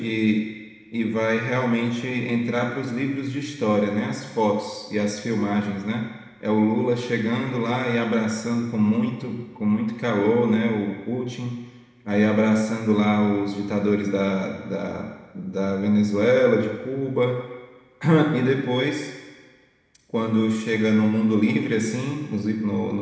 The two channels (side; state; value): both; identical; correlation 1.00